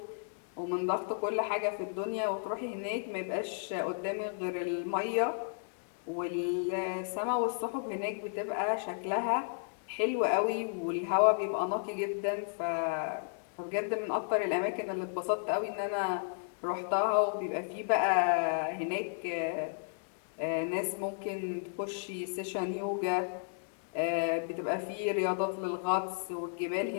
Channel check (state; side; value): silent; right; digital silence